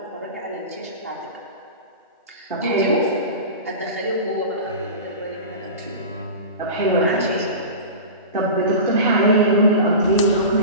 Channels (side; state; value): both; inverted; correlation -0.30